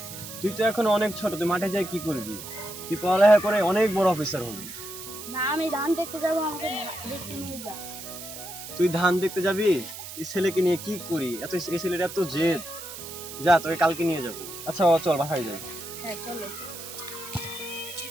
তুই তো এখন অনেক ছোট, তুই মাঠে যাই কি করবি? তুই পড়ালেখা করে অনেক বড় অফিসার হবি। না আমি ধান দেখতে যাবো, আমাকে দেখতে নিয়ে যা। তুই ধান দেখতে যাবি? এই ছেলেকে নিয়ে কি করি? এই ছেলেটা এত জেদ। যা, তোকে কালকে নিয়ে যাবো। আচ্ছা চল বাসায় যাই। হ্যাঁ চলো।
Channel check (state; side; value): noise; right; hiss, 11 dB below the sound